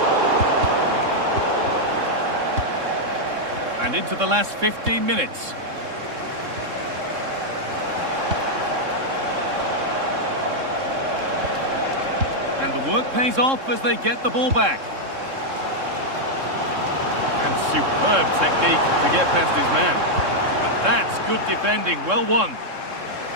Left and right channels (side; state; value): left; late; 3.7 ms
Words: And into the last 15 minutes. And the work pays off as they get the ball back. And superb technique to get past his man. But that's good defending, well won.